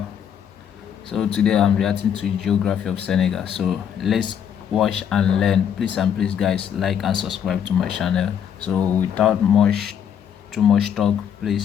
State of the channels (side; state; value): right; quieter; 8.6 dB